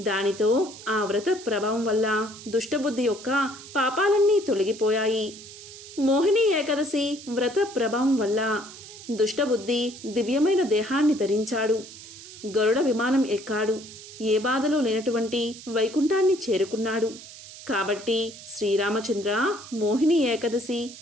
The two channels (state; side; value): noise; right; hiss, 16 dB below the sound